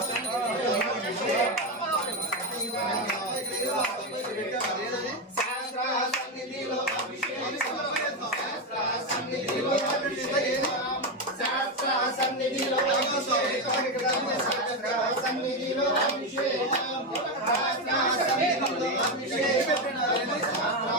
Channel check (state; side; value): normal; both; correlation 0.10